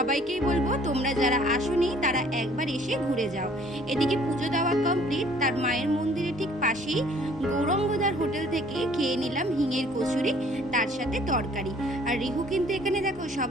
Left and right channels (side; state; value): both; normal; correlation 0.56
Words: বলবো তোমরা যারা আসোনি তারা একবার এসে ঘুরে যাও। এদিকে পুজো দেওয়া কমপ্লিট, তার মায়ের মন্দিরের ঠিক পাশেই গৌরঙ্গদার হোটেল থেকে খেয়ে নিলাম হিঙের কচুরি, তার সাথে তরকারি। আর রিহু কিন্তু এখানে দেখো